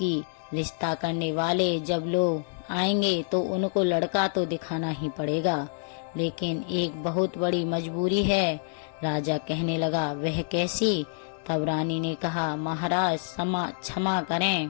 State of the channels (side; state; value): right; silent; digital silence